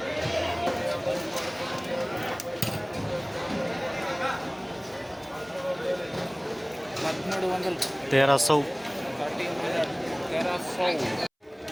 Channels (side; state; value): both; identical; correlation 1.00